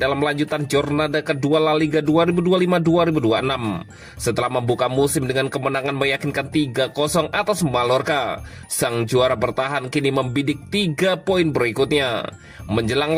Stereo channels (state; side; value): identical; both; correlation 1.00